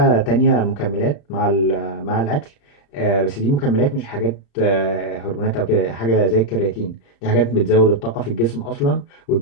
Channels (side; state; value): right; late; 35 ms